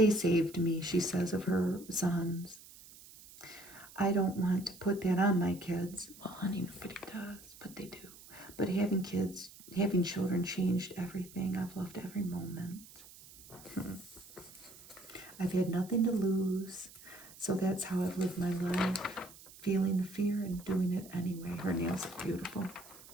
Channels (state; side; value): noise; right; hiss, 20 dB below the sound